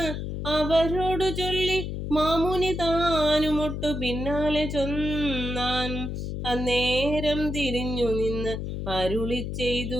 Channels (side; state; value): left; noise; hum, 4 dB below the sound